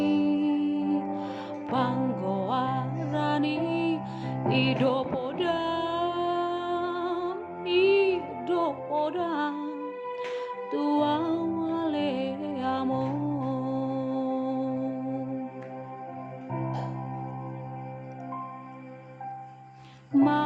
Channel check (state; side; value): identical; both; correlation 1.00